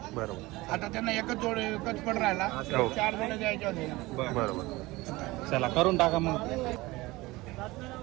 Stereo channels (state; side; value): quieter; left; 20.6 dB